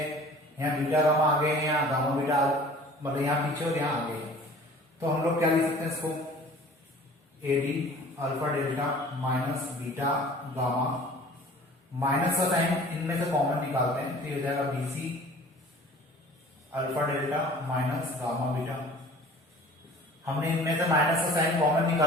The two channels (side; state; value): both; normal; correlation 0.47